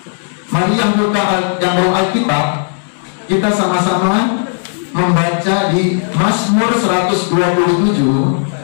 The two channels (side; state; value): right; silent; 68 dB below the other